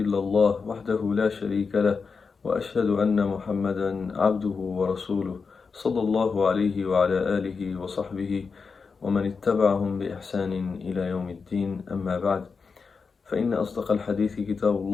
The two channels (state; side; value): quieter; right; 5.0 dB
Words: الله وحده لا شريك له وأشهد أن محمدا عبده ورسوله صلى الله عليه وعلى آله وصحبه ومن اتبعهم بإحسان إلى يوم الدين أما بعد فإن أصدق الحديث كتاب